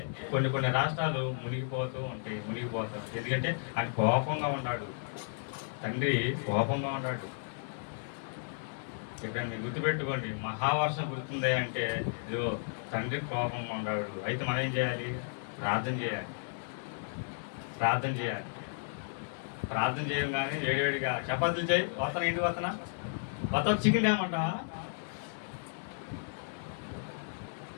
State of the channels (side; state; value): right; silent; digital silence